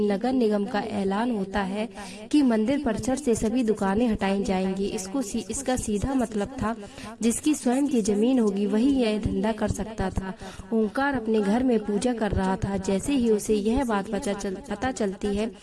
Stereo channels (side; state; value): both; identical; correlation 1.00